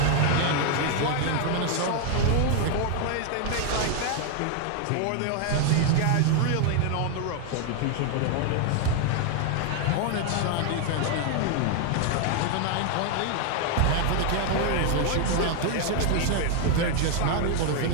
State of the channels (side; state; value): both; different; correlation 0.00